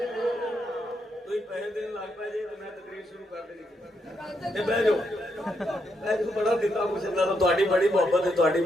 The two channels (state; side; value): normal; both; correlation 0.79